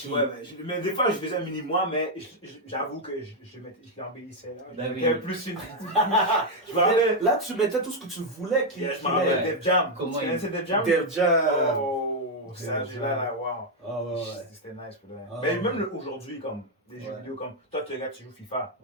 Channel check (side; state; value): both; normal; correlation 0.01